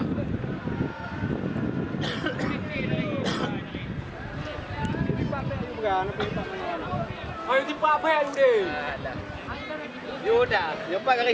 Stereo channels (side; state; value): both; identical; correlation 1.00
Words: Ayo di Pak Beb deh. Yuda, jumpa